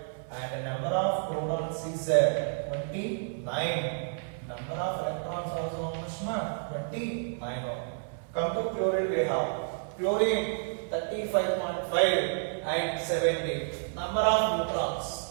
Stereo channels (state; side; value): silent; left; 57 dB below the other